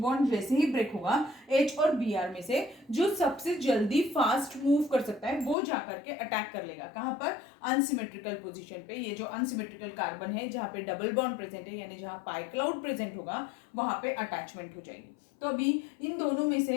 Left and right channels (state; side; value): drops out; right; at 5.6 s